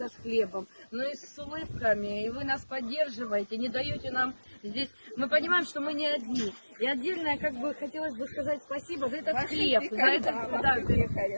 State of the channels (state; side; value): inverted; both; correlation -1.00